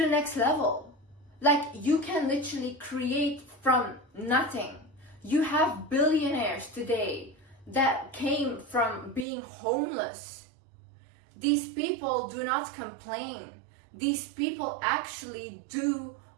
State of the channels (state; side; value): drops out; left; at 9.2 s